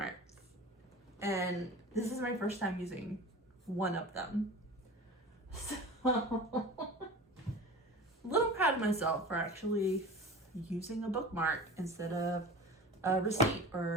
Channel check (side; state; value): both; normal; correlation 0.36